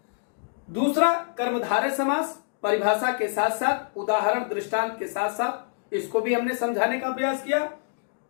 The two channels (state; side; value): silent; right; digital silence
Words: दूसरा कर्मधारय समास, परिभाषा के साथ साथ उदाहरण दृष्टांत के साथ साथ इसको भी हमने समझाने का प्रयास किया।